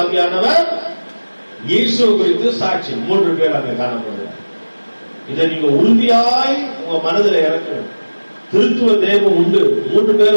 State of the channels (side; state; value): both; inverted; correlation -1.00